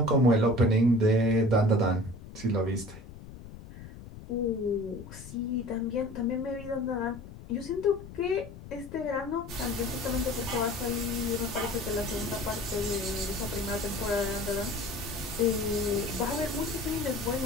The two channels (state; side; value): noise; left; rumble, 15 dB below the sound